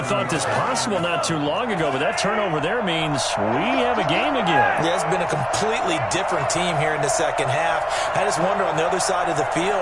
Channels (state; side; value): identical; both; correlation 1.00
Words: thought this possible not too long ago, but that turnover there means we have a game again. Yeah, it's been a completely different team here in the second half. I just wonder on the other side of the